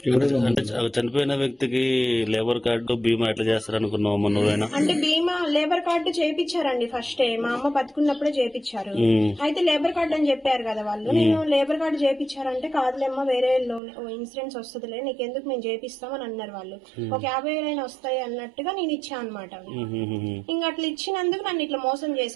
అంటే చనిపోయిన వ్యక్తికి లేబర్ కార్డు బీమా ఎట్లా చేస్తారు అనుకున్నావు నువ్వేనా? అంటే బీమా లేబర్ కార్డు చేపించారండి ఫస్టే, మా అమ్మ బతుకున్నప్పుడే చేపించారు. అయితే లేబర్ కార్డు అని చెప్పారు కదా వాళ్ళు. నేను లేబర్ కార్డు చేపించారంటే కాదులేమ్మా వేరే లోన్ ఇన్సూరెన్స్ వస్తుందిలే, నీకెందుకు మేము చేపిస్తామని అన్నారు వాళ్ళు. ఒక 50,000 వస్తాయి అన్నట్టుగా నేను ఇచ్చా అనమాట. ఇంకా అట్లా ఇచ్చినందుకు నన్ను ఇట్లా మోసం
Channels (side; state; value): left; drops out; at 13.8 s